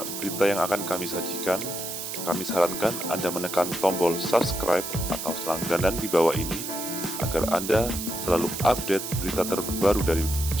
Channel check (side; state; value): right; noise; hiss, 6 dB below the sound